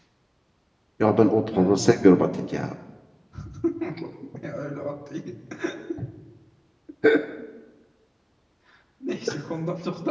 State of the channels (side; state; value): both; identical; correlation 1.00